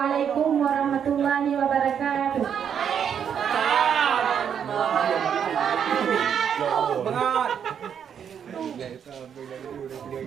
warahmatullahi wabarakatuh. Bengat.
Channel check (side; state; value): left; quieter; 8.1 dB